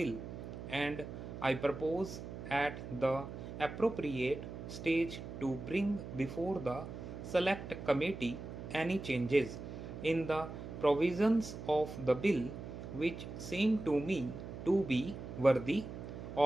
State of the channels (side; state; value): right; noise; hum, 9 dB below the sound